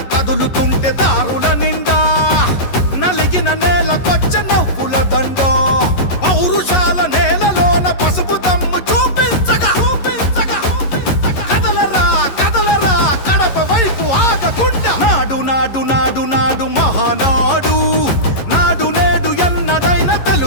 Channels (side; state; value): right; late; 11 ms